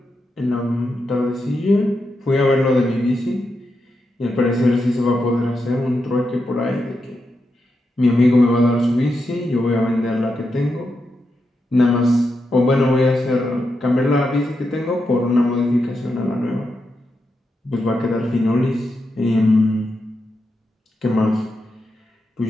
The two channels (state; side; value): normal; both; correlation 0.86